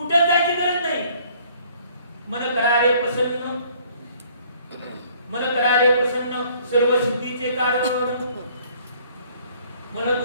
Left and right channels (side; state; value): both; inverted; correlation -0.59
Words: जायची गरज नाही. मन करारे प्रसन्न, मन करारे प्रसन्न सर्व सिद्धीचे कारण. मन